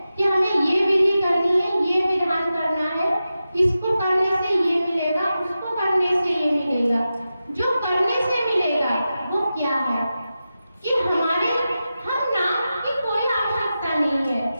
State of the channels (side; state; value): both; inverted; correlation -0.92